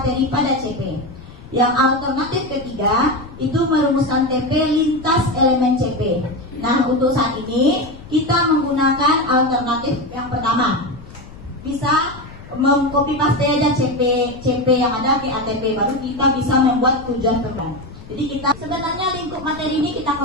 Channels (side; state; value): left; noise; rumble, 17 dB below the sound